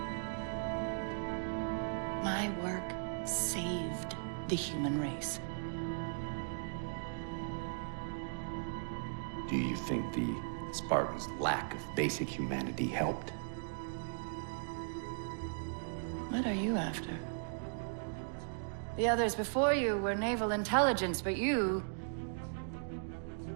My work saved the human race. Do you think the Spartans' lack of basic humanity helped? What are you after? The others before you were naval intelligence, but you're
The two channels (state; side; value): silent; left; digital silence